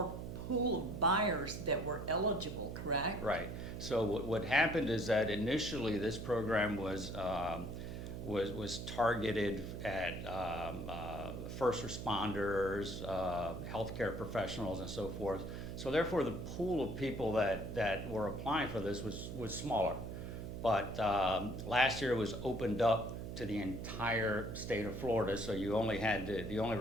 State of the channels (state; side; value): noise; right; hum, 7 dB below the sound